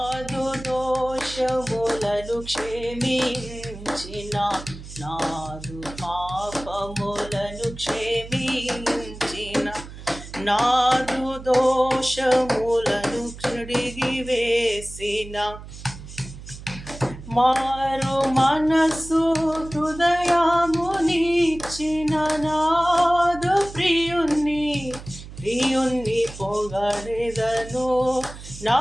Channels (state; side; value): noise; right; hum, 14 dB below the sound